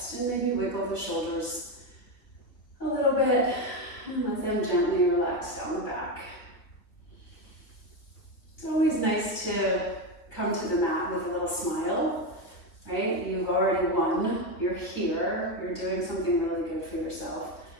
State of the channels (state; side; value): late; right; 3.3 ms